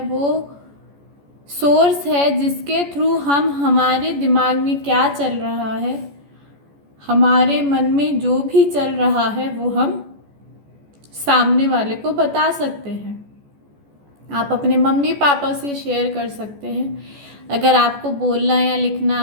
वो सोर्स है जिसके थ्रू हम हमारे दिमाग में क्या चल रहा है, हमारे मन में जो भी चल रहा है वो हम सामने वाले को बता सकते हैं। आप अपने मम्मी पापा से शेयर कर सकते हैं। अगर आपको बोलना या लिखना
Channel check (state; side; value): late; left; 14 ms